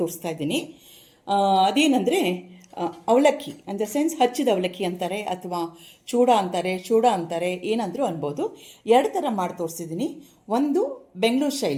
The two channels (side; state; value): both; identical; correlation 1.00